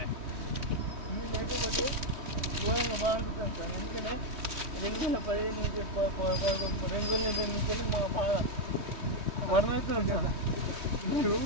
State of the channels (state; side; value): late; left; 3.2 ms